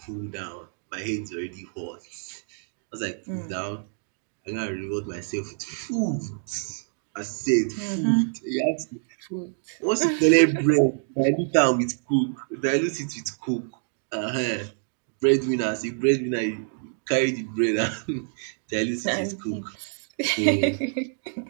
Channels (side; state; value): left; silent; 60 dB below the other